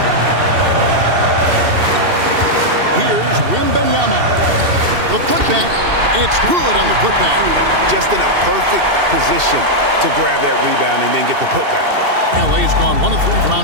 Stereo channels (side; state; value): left; late; 2.7 ms